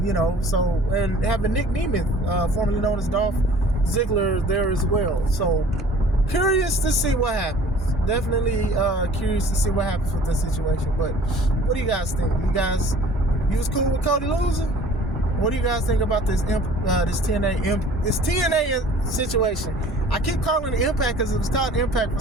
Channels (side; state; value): both; normal; correlation 0.49